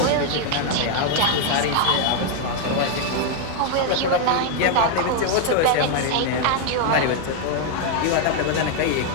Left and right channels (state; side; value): different; both; correlation 0.00